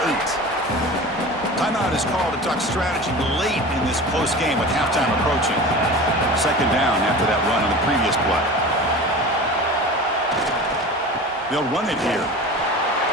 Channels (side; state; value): both; normal; correlation 0.35